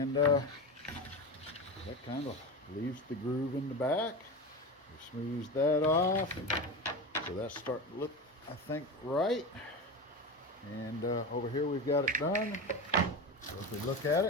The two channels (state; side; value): normal; both; correlation 0.23